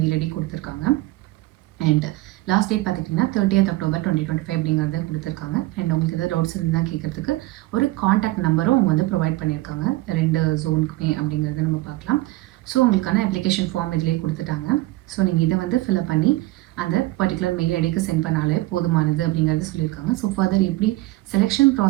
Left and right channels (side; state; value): left; quieter; 18.6 dB